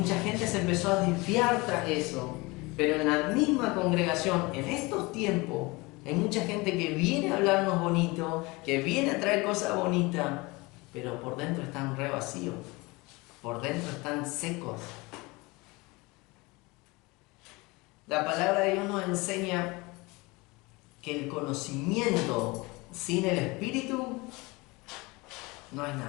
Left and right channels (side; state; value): right; quieter; 24.2 dB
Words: gente se empezó a desviar tras eso. Pero en la misma congregación, en estos tiempos, hay mucha gente que viene a hablarnos bonito, que viene a traer cosas bonitas, pero por dentro están re vacíos, por dentro están secos. La palabra de Dios nos enseña que el conocimiento sin el Espíritu no es